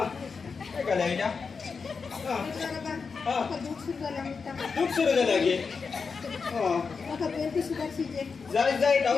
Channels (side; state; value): right; quieter; 5.2 dB